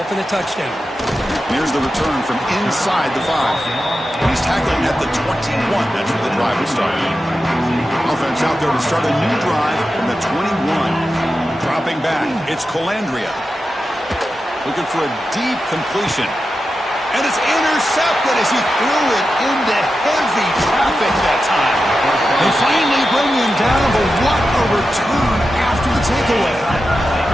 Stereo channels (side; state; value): both; normal; correlation 0.91